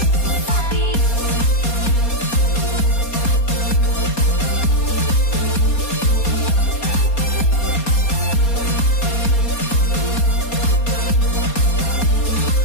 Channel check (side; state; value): right; late; 4.2 ms